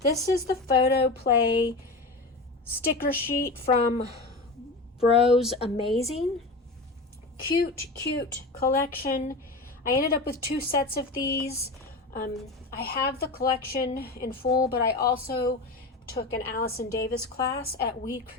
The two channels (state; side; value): quieter; right; 3.2 dB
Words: is the Photo Play sticker sheet from Bros Amazing. Cute collection. I ended up with 2 sets of these. I have the collection in full, but I also took an Allison Davis class at We